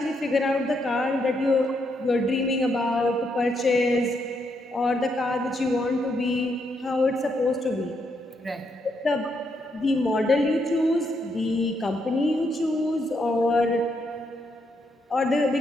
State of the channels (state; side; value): normal; both; correlation 0.78